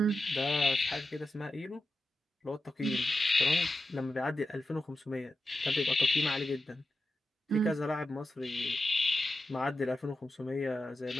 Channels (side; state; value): both; normal; correlation 0.91